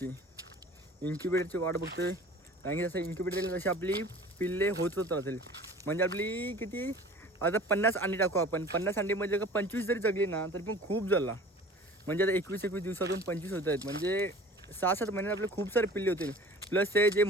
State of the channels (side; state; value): both; normal; correlation 0.44